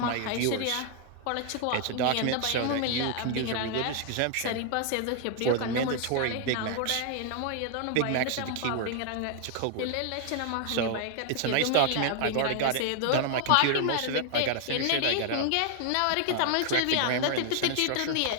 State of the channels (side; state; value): both; different; correlation 0.00